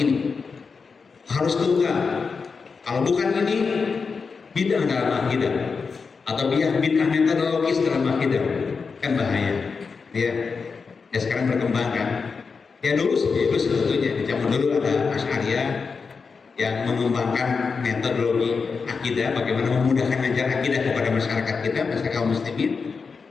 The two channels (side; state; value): right; quieter; 5.1 dB